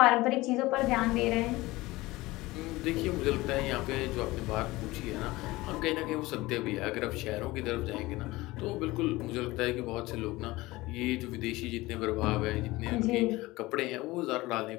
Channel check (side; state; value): right; quieter; 19.9 dB